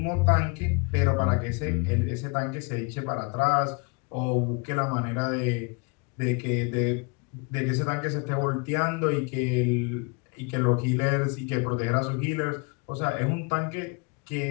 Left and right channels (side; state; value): right; quieter; 31.7 dB